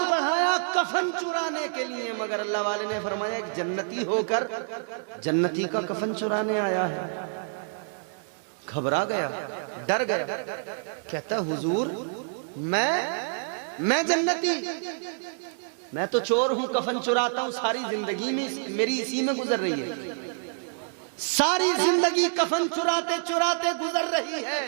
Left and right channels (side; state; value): left; silent; digital silence